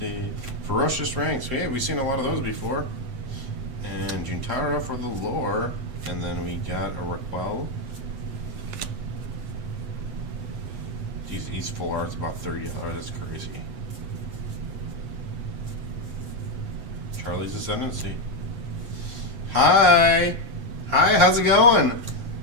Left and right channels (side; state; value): left; late; 8.0 ms